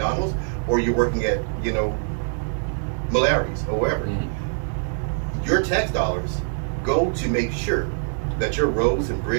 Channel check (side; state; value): left; silent; digital silence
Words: or you're working at Malari's or wherever. Mm-hmm. Your tax dollars go to make sure that your roads and